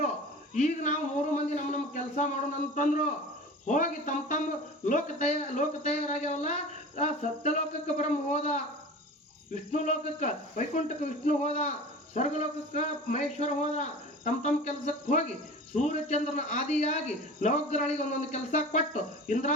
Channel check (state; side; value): normal; both; correlation 0.37